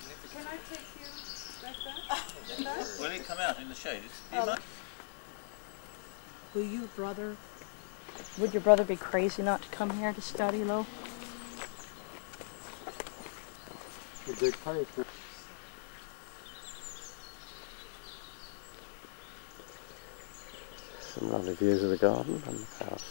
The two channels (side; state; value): right; silent; 52 dB below the other